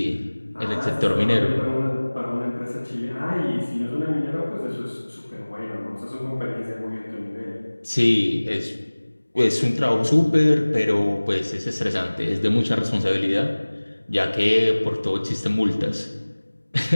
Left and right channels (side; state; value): both; inverted; correlation -1.00